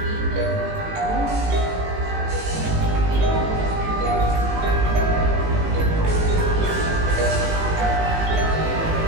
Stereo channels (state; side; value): late; left; 18 ms